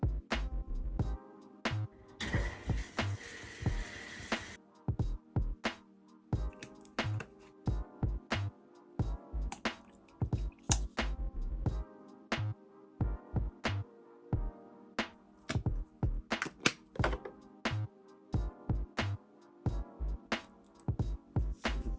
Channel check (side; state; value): both; identical; correlation 1.00